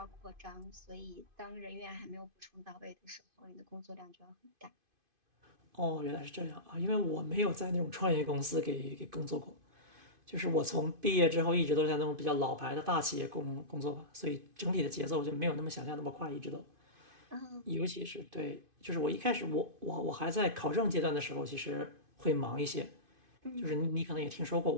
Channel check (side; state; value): left; late; 2.5 ms